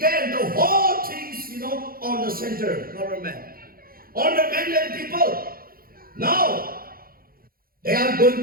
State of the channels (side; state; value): left; late; 0.42 ms